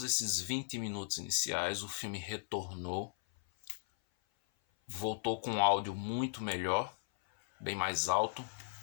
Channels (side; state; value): right; silent; 53 dB below the other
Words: esses 20 minutos iniciais, o filme retornou, voltou com um áudio muito melhor, bem mais alto,